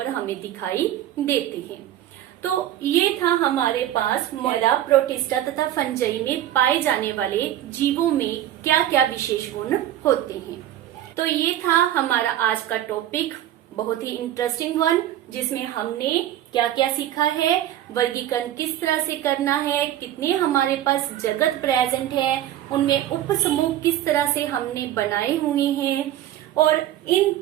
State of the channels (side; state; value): left; quieter; 12.5 dB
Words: हमें दिखाई देते हैं। तो ये था हमारे पास मोनेरा, प्रोटिस्टा तथा फंजाई में पाए जाने वाले जीवों में क्या क्या विशेष गुण होते हैं। तो ये था हमारा आज का टॉपिक, बहुत ही इंटरेस्टिंग वन, जिसमें हमने क्या क्या सीखा है, वर्गीकरण किस तरह से करना है, कितने हमारे पास जगत प्रेजेंट है, उनमें उप समूह किस तरह से हमने बनाए हुए हैं, और इन